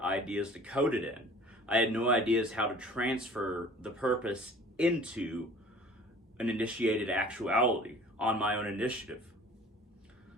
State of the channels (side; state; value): both; normal; correlation 0.47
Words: ideas to code it in. I had no ideas how to transfer the purpose into an initiated actuality on my own initiative.